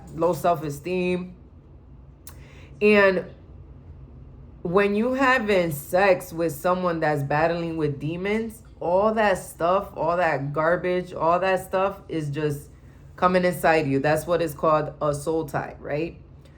low self-esteem. And when you having sex with someone that's battling with demons, all that stuff, all that garbage, all that stuff is just coming inside you. That's what is called a soul tie, right?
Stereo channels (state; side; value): identical; both; correlation 1.00